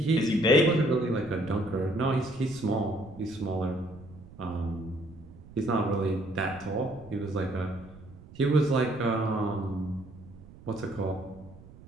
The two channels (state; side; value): noise; right; rumble, 20 dB below the sound